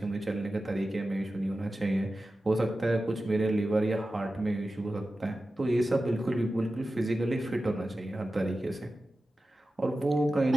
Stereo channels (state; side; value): normal; both; correlation 0.94